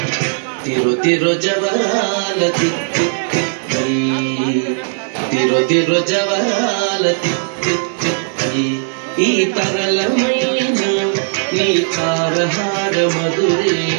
తిరు తిరు జవరాల తిత్తి తిత్తి తిరు తిరు జవరాల తిత్తి తిత్తి ఈ తరళమైన నీ తారహార మధురే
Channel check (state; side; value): silent; left; digital silence